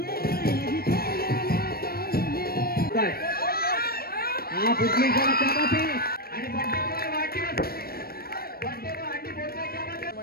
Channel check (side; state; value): right; late; 0.44 ms